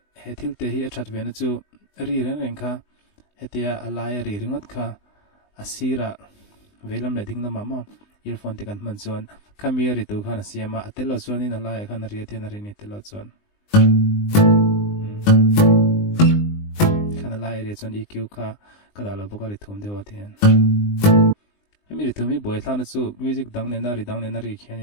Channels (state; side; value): late; right; 20 ms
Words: thil te hi athat vena chu ri ren kha hetia alaya ri ringot kha asira velam le ding lama ma earphone te kan man chuan khamia ri tu khana siama atelo chuan in ala khan ria te na ri ni telo chuan khana la area chon EQ kha kada lo boka ri thum dewa thian mi ri thumi boy thana chu music dang ne na ri khiani